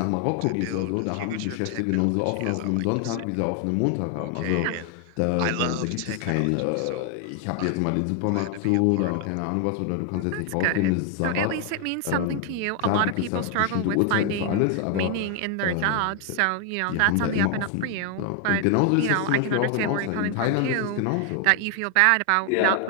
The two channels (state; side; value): different; both; correlation 0.00